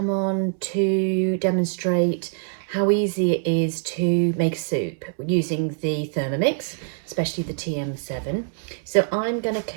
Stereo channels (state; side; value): silent; left; 63 dB below the other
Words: on to demonstrate how easy it is to make soup using the Thermomix, especially the TM7. So I'm going to